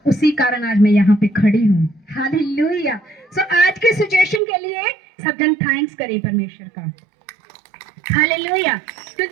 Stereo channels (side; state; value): left; drops out; at 4.4 s